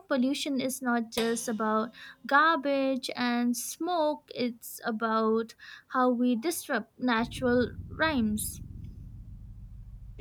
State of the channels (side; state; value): both; identical; correlation 1.00